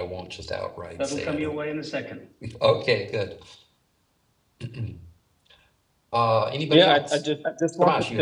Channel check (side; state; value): both; identical; correlation 1.00